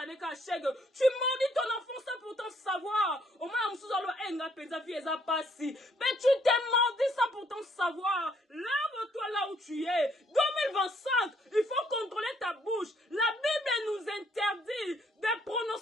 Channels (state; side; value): normal; both; correlation 0.68